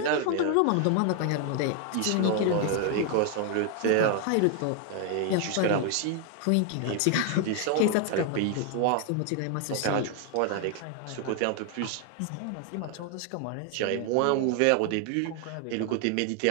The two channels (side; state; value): both; different; correlation 0.00